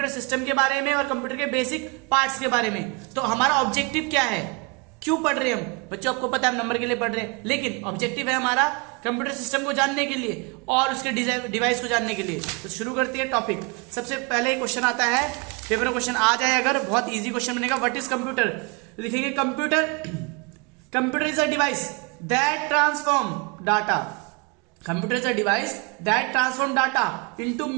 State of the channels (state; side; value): quieter; left; 30.5 dB